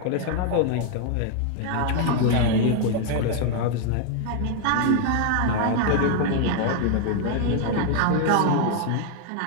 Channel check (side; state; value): both; different; correlation 0.00